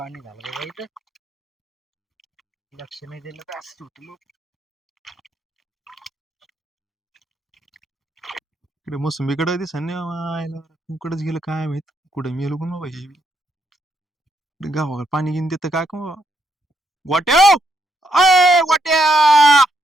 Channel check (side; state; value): both; normal; correlation 0.76